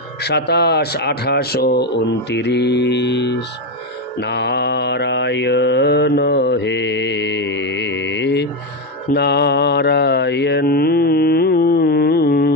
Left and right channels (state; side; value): normal; both; correlation 0.10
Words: 27, 28 ও 29। নারায়ণ হে নারায়ণ